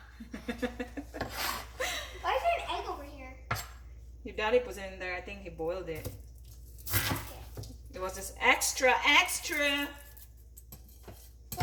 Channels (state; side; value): identical; both; correlation 1.00